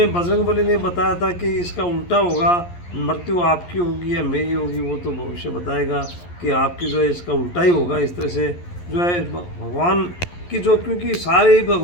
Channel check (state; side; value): late; right; 11 ms